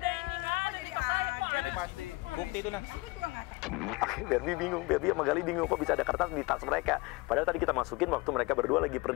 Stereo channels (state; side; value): quieter; right; 23.9 dB